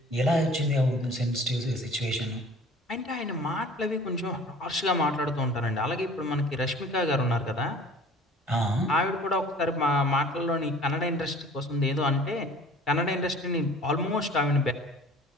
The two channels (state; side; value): normal; both; correlation 0.47